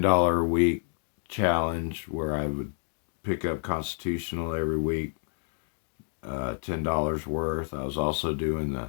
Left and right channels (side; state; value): right; silent; digital silence